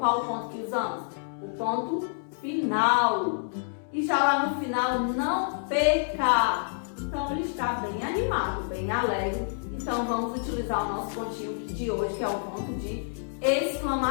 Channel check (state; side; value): silent; right; digital silence